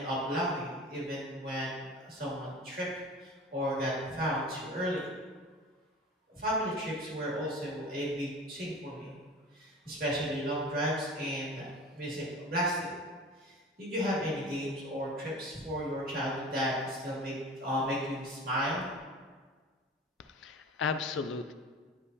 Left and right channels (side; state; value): both; normal; correlation 0.38